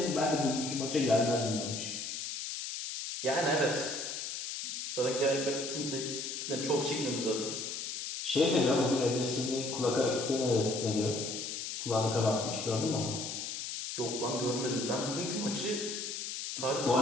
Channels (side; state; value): left; noise; hiss, 5 dB below the sound